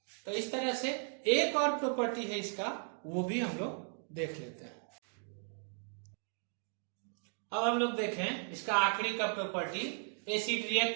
तो इस तरह से एक और प्रॉपर्टी है इसका, वो भी हम लोग देख लेते हैं। अब हम लोग देखें इसका आखिरी का property, acid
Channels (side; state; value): left; silent; 54 dB below the other